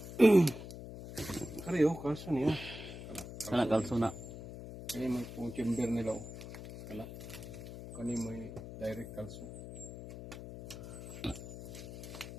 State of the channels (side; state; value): left; noise; hum, 11 dB below the sound